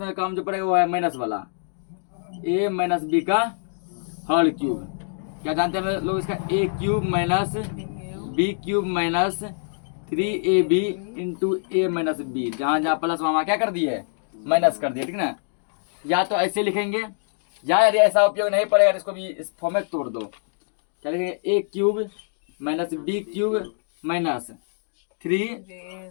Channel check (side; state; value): right; silent; digital silence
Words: काम जो पड़ेगा वो है माइनस वाला, a माइनस b का होल क्यूब। क्या जानते हैं लोग इसका, a³ minus b³ minus 3ab into a minus b। जहाँ जहाँ प्लस वहाँ क्या कर दिए, माइनस कर दिए। ठीक ना। या तो ऐसे लिखेंगे, या यदि ऐसा उपयोग नहीं पड़ेगा तो इसको भी इस फॉर्म में तोड़ दो। क्या लिखेंगे, a³ minus b³ minus